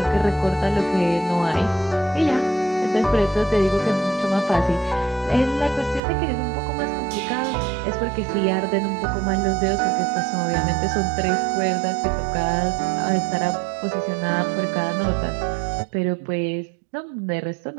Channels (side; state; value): left; drops out; at 6.0 s